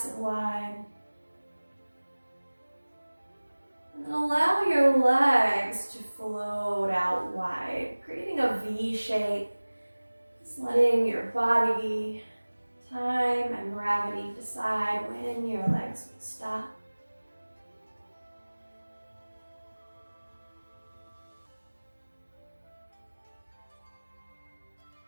and wide. And then allow your legs to float out wide, creating a V shape. Just letting your body, time, and gravity decide when your legs will stop.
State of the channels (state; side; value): inverted; both; correlation -1.00